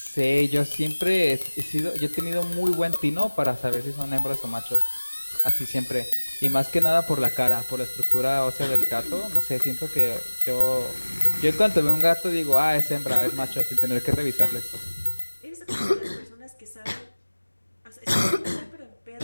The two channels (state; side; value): inverted; both; correlation -1.00